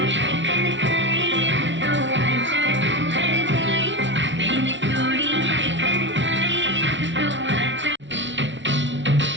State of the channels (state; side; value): late; left; 0.54 ms